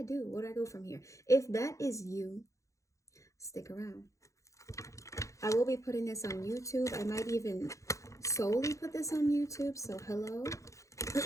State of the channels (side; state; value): right; late; 0.15 ms